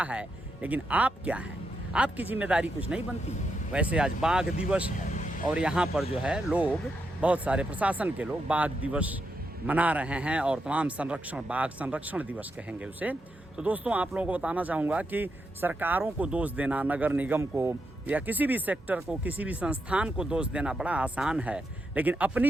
है, लेकिन आप क्या हैं? आपकी जिम्मेदारी कुछ नहीं बनती। वैसे आज बाघ दिवस है और यहाँ पर जो है लोग, बहुत सारे प्रशासन के लोग बाघ दिवस मना रहे हैं और तमाम संरक्षण, बाघ संरक्षण दिवस कहेंगे उसे। तो दोस्तों आप लोगों को बताना चाहूँगा कि सरकारों को दोष देना, नगर निगम को या किसी भी सेक्टर को, किसी भी संस्थान को दोष देना बड़ा आसान है, लेकिन अपनी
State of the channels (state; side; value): normal; both; correlation 0.83